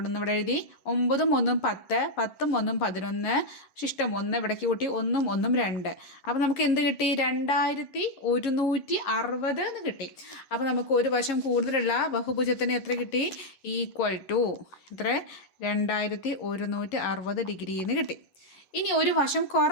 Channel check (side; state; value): right; late; 11 ms